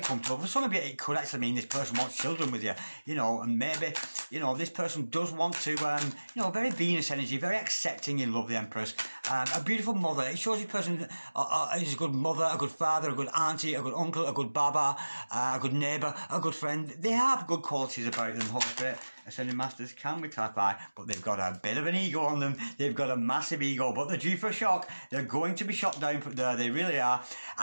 comfortable. For some of you, it could actually mean this person wants children with you, you know, and maybe, you know, this person does want to, you know, very Venus energy, very accepting in love, the Empress. a beautiful mother. It shows this person is a good mother, a good father, a good auntie, a good uncle, a good baba, a good neighbour, a good friend. They have good qualities about them, Holy Spirit. Ascending Masters can be clarified, but they've got a bit of an ego on them. They've got a massive ego, but they're due for a shock. They're going to be shot down from there. They really are.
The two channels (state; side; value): inverted; both; correlation -1.00